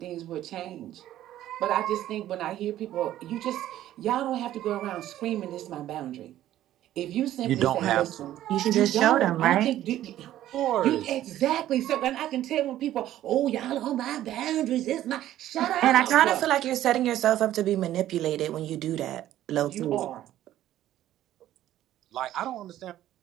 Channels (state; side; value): quieter; left; 13.1 dB